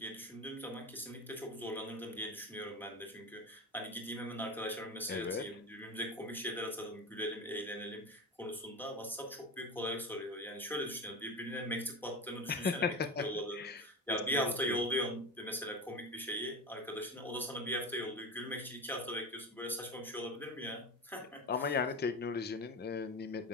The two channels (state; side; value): normal; both; correlation 0.26